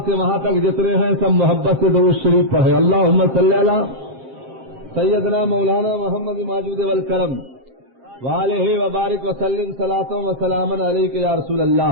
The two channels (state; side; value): late; left; 7.6 ms